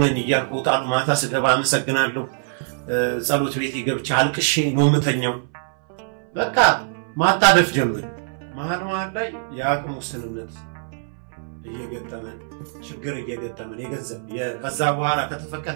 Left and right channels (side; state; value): left; silent; 60 dB below the other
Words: ነኝ እያልኩ ወጣሉ። ማታ ስገባ አመሰግናለሁ። ጸሎት ቤት ገብቼ አልቅሼ ነው የምተኛው። በቃ ማጣደፍ ጀመረ። መሀል ላይ የአቅም ውስንነት እየገጠመን ችግር እየገጠመን የገንዘብ ከዛ በኋላ